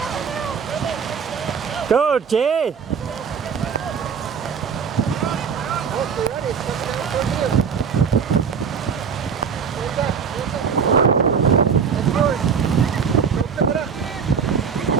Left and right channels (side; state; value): left; quieter; 6.4 dB